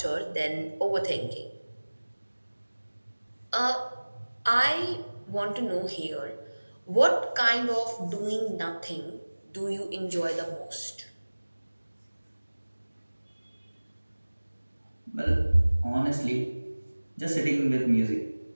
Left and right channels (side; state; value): both; inverted; correlation -1.00